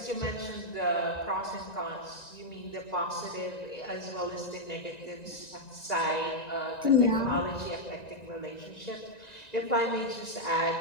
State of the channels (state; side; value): late; right; 1.9 ms